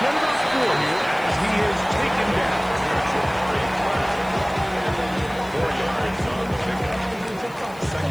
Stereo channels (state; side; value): noise; left; hiss, 23 dB below the sound